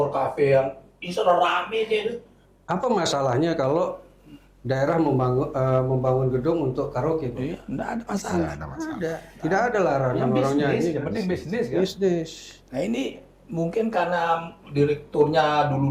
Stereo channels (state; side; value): identical; both; correlation 1.00